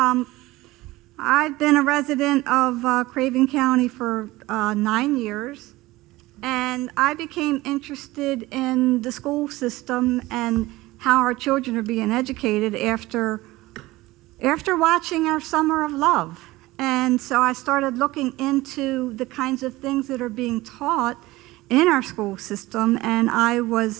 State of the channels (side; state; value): left; quieter; 19.0 dB